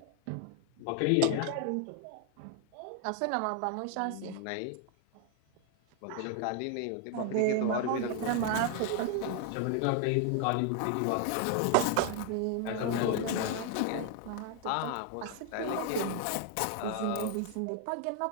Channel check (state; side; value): different; both; correlation 0.01